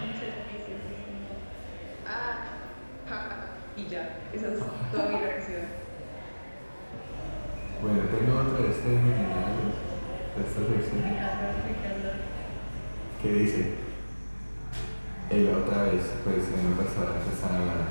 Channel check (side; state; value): both; inverted; correlation -1.00